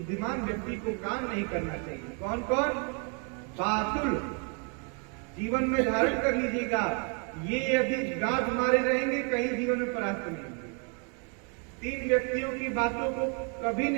व्यक्ति को काम नहीं करना चाहिए। कौन कौन? बातुल, जीवन में धारण कर लीजिएगा, ये यदि गांठ मारे रहेंगे कहीं जीवन में परास्त नहीं। 3 व्यक्तियों की बातों को कभी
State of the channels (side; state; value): left; quieter; 38.1 dB